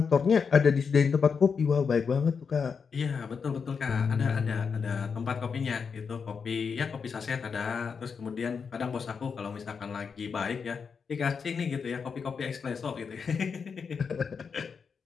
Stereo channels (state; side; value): quieter; right; 5.9 dB